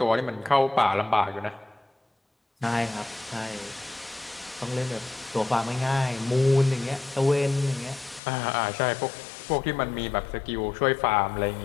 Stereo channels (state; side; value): drops out; right; at 8.2 s